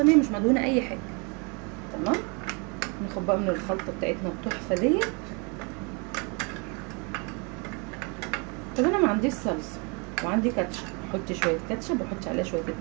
مش مدهونه اي حاجه. تمام. ناخد بقى من الخلطه بتاعتنا التحفه ديت. طب انا ما عنديش صلصه وعندي كاتشب، حطي شويه كاتشب وحطي عليها شويه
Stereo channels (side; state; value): left; quieter; 32.4 dB